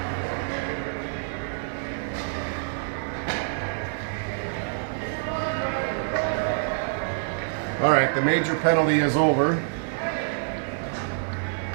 All right, the major penalty is over.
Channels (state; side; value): silent; left; digital silence